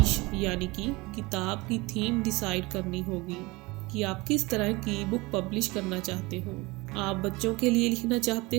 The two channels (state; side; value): quieter; left; 23.4 dB